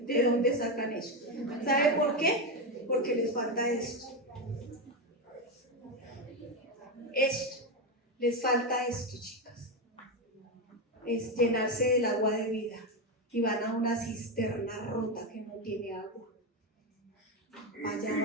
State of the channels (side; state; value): both; normal; correlation 0.10